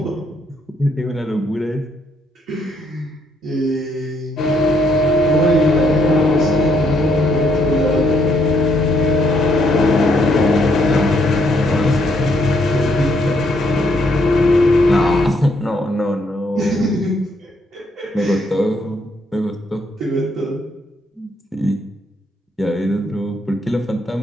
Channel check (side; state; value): both; normal; correlation 0.72